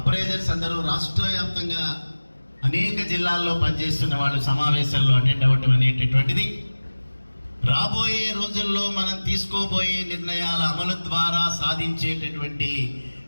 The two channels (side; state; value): both; inverted; correlation -1.00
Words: అందరూ రాష్ట్ర వ్యాప్తంగా అనేక జిల్లాల్లో పనిచేస్తున్న వాళ్ళు సమావేశాల్లో అటెండ్ అవ్వటం అనేటటువంటిది రాబోయే రోజుల్లో మనం తీసుకోబోయే నిర్ణయాల అమలు ద్వారా సాధించేటటువంటి